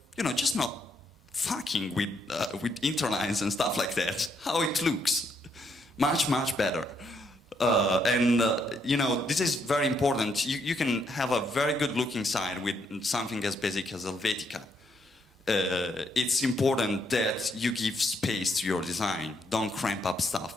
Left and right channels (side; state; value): both; normal; correlation 0.74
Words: just not fucking with interlines and stuff like that. How it looks. Much, much better. This is very important. You can have a very good looking site with something as basic as Helvetica. It's important that you give space to your design. Don't cramp up stuff